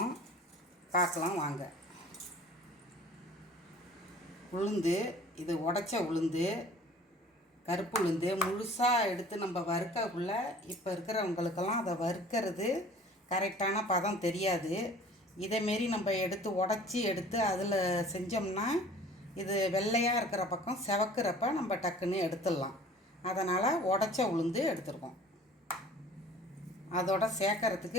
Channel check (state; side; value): normal; both; correlation 0.48